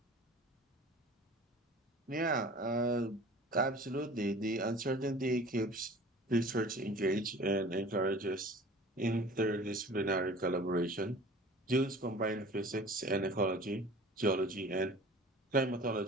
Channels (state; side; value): normal; both; correlation 0.44